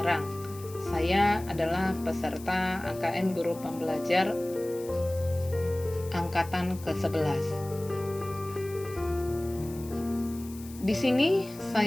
Saya adalah peserta AKM Guru Pembelajar angkatan ke-11. Di sini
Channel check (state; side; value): noise; left; hiss, 18 dB below the sound